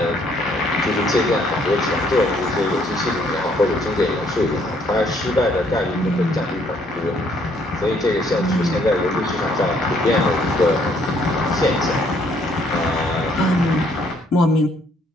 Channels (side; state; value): both; normal; correlation 0.66